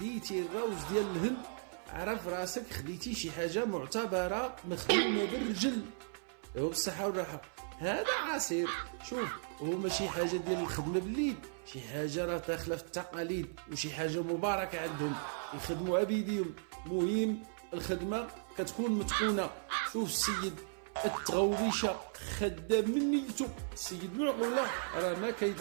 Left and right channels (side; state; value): left; silent; 54 dB below the other